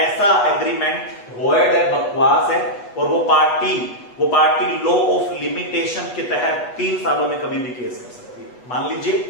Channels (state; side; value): late; right; 8.2 ms